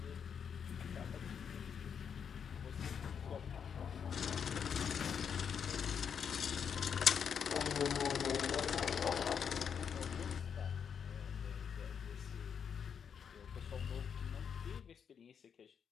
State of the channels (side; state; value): right; quieter; 7.3 dB